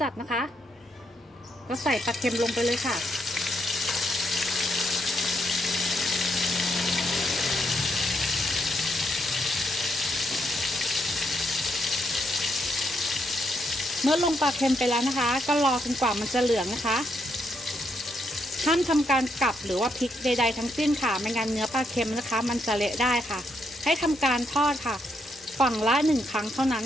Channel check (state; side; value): normal; both; correlation 0.77